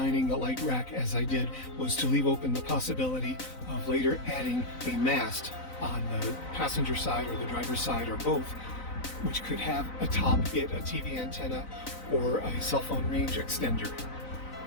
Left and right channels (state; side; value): late; right; 4.0 ms